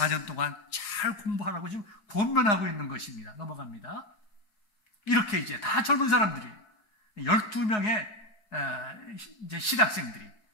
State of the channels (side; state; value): right; late; 4.8 ms